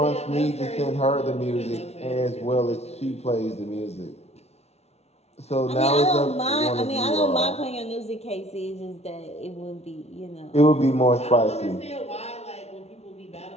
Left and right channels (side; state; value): right; late; 0.31 ms